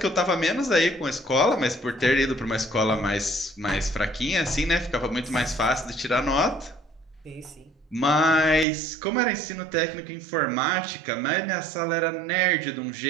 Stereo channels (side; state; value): left; drops out; at 8.7 s